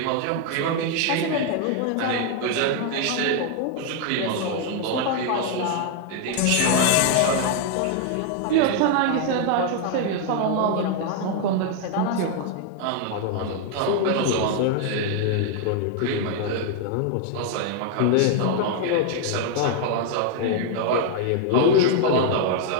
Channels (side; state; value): both; different; correlation 0.00